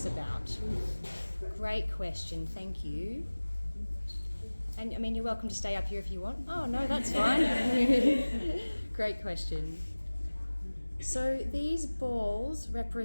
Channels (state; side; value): inverted; both; correlation -1.00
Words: about? Great question, thank you. And I mean, you're welcome to stay up here if you want. Oh no, that's fine. Great question. So these balls